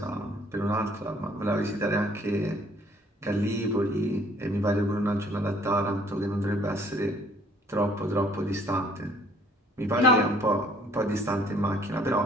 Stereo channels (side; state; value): both; normal; correlation 0.59